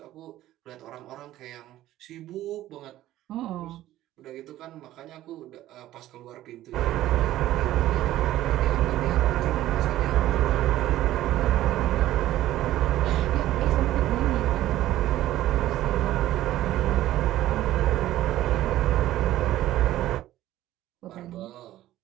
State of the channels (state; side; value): quieter; left; 14.3 dB